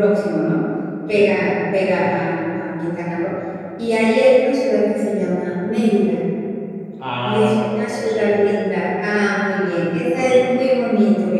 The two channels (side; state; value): both; identical; correlation 1.00